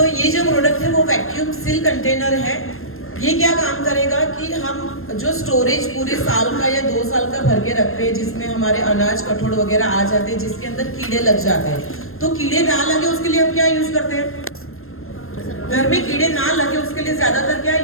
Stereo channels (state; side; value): late; right; 0.61 ms